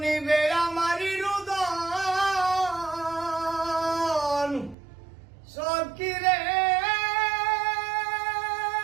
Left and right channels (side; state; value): left; drops out; at 4.8 s